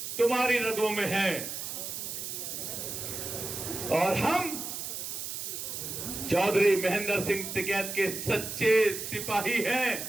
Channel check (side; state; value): right; noise; hiss, 6 dB below the sound